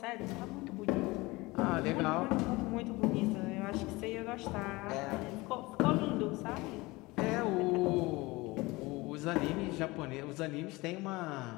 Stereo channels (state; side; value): quieter; right; 22.2 dB